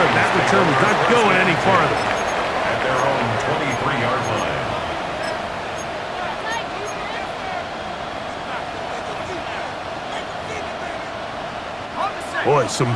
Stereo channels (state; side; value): identical; both; correlation 1.00